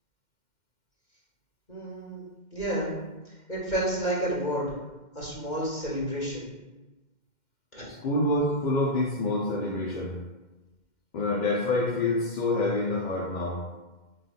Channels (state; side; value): late; right; 2.1 ms